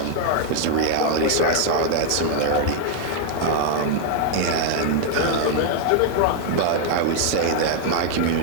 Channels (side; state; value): both; different; correlation 0.00